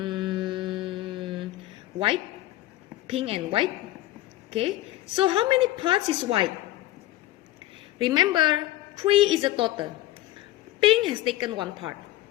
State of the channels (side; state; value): right; quieter; 15.7 dB